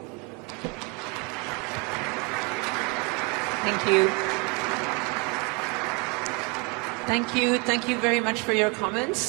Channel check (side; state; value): left; quieter; 29.8 dB